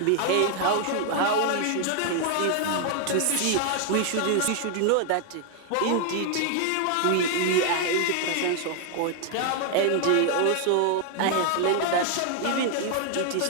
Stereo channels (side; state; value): both; different; correlation 0.00